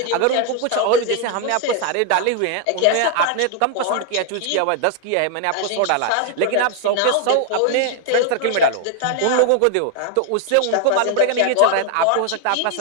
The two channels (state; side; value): different; both; correlation 0.00